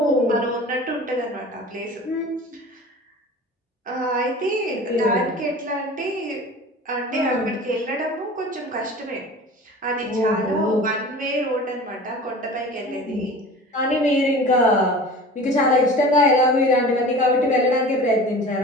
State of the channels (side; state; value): both; normal; correlation 0.39